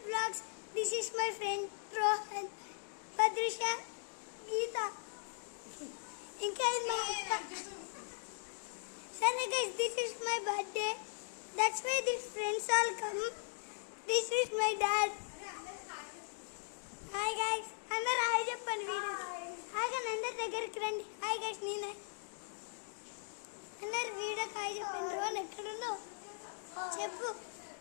Vlogs. This is my friend Rohan, Padrisha, Geeta. Sorry guys, this is my birthday. That's why these friends all come. This is my dad. Hi guys. Andar hi cheppandi video. Hi guys, andar దగ్గరికి రండి. Hi guys, నేనే. అందరు video hi చెప్పండి. రోన్ ఎక్కడున్నావు? చెప్పు.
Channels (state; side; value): silent; right; digital silence